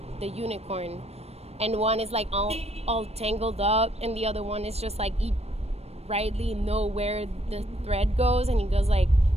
unicorn, and one is like all tangled up, and the other one is just like rightly know where the thread goes, and he goes like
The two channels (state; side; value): late; left; 0.30 ms